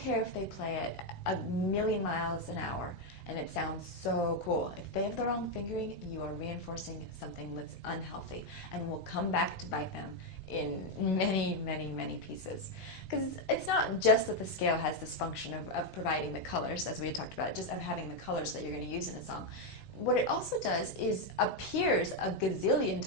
if they play it 1,000,000 miles an hour and it sounds so cool. If they have the wrong fingering, you are reinforcing something that's unhealthy and will come back to bite them in many, many, many pieces. Because it's not just that the scale has this function of providing the colors, as we had talked about, just of having the colors that you're going to use in a song. What it also does is appears a gazillion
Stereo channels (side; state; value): right; late; 16 ms